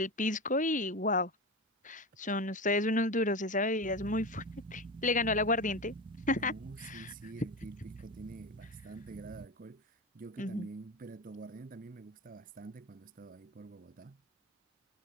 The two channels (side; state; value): both; normal; correlation 0.23